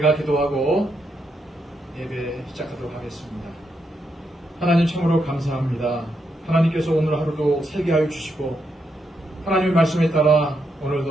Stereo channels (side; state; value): both; normal; correlation 0.81